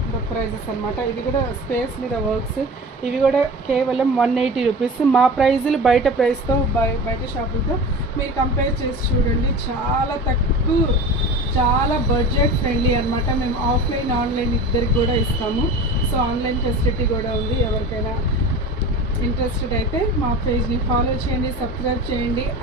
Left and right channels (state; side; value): normal; both; correlation 0.34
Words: ప్రైజెస్ అనమాట. ఇవి కూడా స్పేస్ మీద వర్క్స్, ఇవి కూడా కేవలం 180 రూపీస్. మా ప్రైజులు బయట ప్రైస్తో బయట షాపులతో మీరు కంపేర్ చేసి చూడండి. చాలా తక్కువ, చాలా బడ్జెట్ ఫ్రెండ్లీ అనమాట. మేము ఆఫ్లైన్ ఆన్లైన్ ఇద్దరికి కూడా ఇస్తాము. సో ఆన్లైన్ ఫెసిలిటీ కూడా ఉంది. ఎవరికైనా ఇంట్రెస్టెడ్ అయితే మా పేజ్ని ఫాలో చేయండి, సబ్స్క్రైబ్ చేయండి